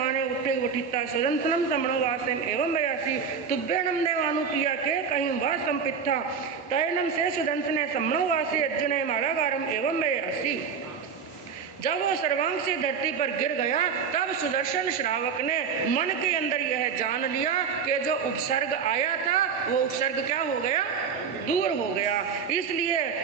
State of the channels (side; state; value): left; quieter; 6.3 dB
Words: उठे उठिता सुदंसनम सम्मनोवासम एवं वयासी तुभ्यनम देवानुप्रिया के कहीं वा संपित्था तैनम से सुदंसने सम्मनोवासी अर्जुन मालागारम एवं वयासी। जब वो सर्वांग से धरती पर गिर गया तब सुदर्शन श्रावक ने मन के अंदर यह जान लिया कि जो उपसर्ग आया था वो उपसर्ग क्या हो गया, दूर हो गया। इसलिए